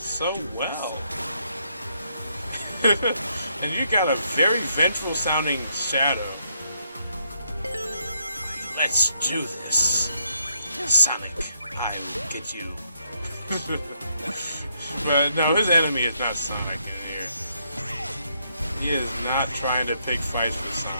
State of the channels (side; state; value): both; inverted; correlation -0.74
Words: well. And you got a very vengeful sounding Shadow. Let's do this. Sonic, I will get you. But no, his enemy is not Sonic in here. He is not trying to pick fights with